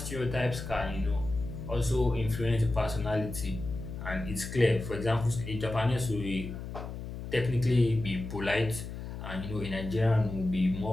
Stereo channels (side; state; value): left; noise; hum, 8 dB below the sound